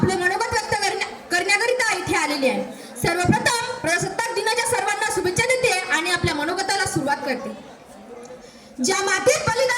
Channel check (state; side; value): identical; both; correlation 1.00